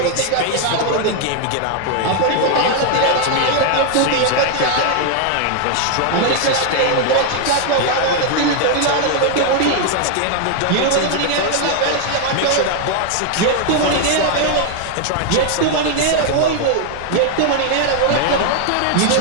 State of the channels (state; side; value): different; both; correlation 0.00